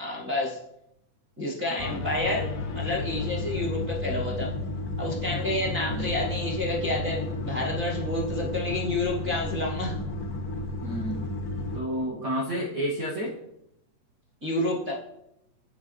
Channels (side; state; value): left; late; 8.3 ms